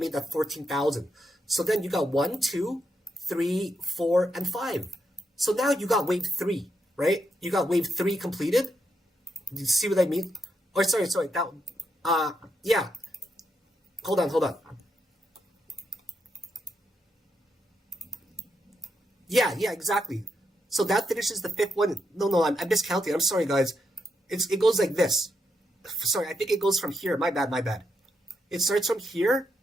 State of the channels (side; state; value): both; normal; correlation 0.82